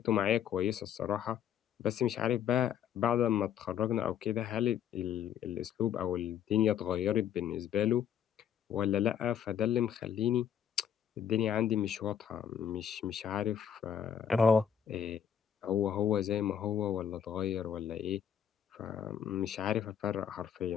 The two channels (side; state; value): right; quieter; 8.9 dB